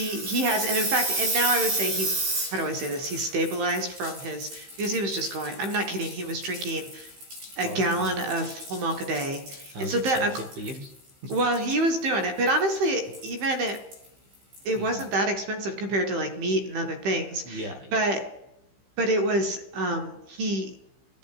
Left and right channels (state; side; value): late; left; 15 ms